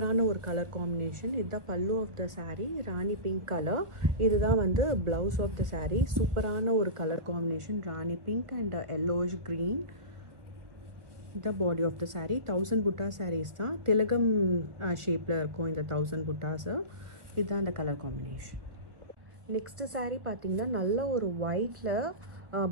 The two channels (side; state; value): left; late; 1.4 ms